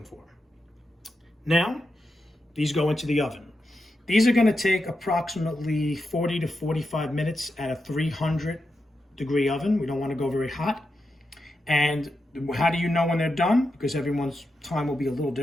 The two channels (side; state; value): both; normal; correlation 0.87